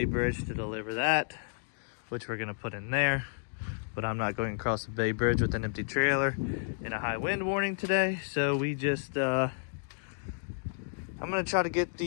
Bridge to deliver that, which we're gonna put in there. But I'm not going across the Bay Bridge with an empty trailer in a high wind warning today. So we just, I'm gonna try to get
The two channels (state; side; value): silent; right; digital silence